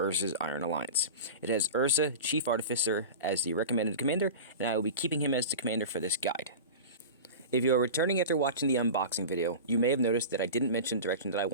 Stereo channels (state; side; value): inverted; both; correlation -0.30